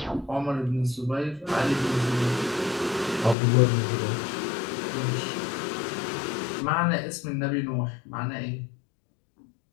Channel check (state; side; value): drops out; right; at 3.4 s